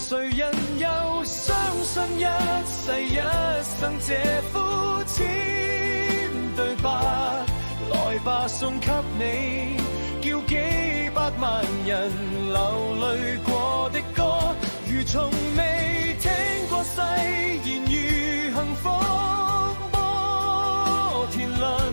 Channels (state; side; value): inverted; both; correlation -1.00